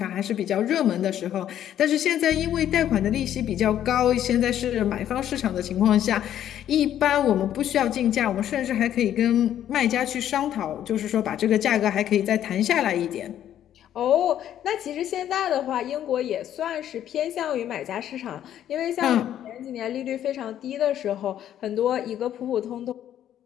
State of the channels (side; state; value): right; quieter; 11.0 dB